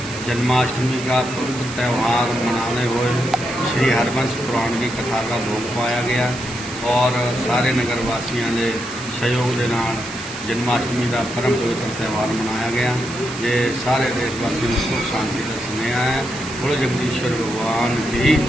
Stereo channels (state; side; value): noise; right; hiss, 13 dB below the sound